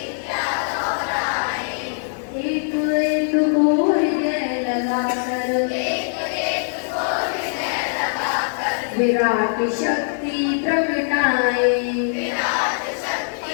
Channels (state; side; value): silent; right; digital silence